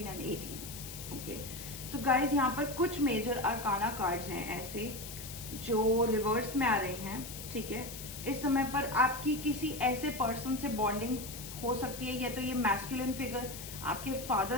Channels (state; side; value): noise; left; hiss, 11 dB below the sound